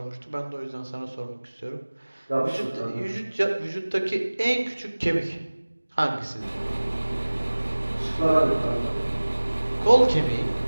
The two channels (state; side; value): inverted; both; correlation -1.00